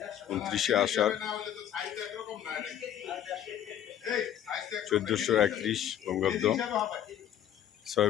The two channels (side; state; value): right; quieter; 10.6 dB